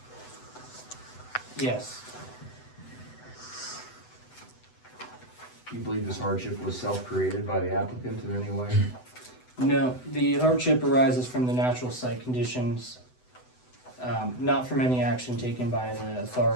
Yes, Do you believe this hardship was self-created by the applicant in any way? no, the hardship arises from the natural site conditions, not from any action taken by the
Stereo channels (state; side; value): late; right; 8.0 ms